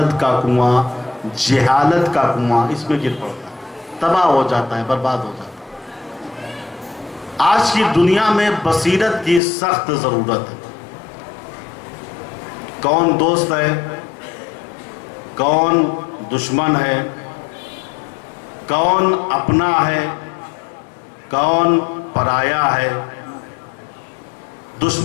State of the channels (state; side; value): drops out; right; at 9.4 s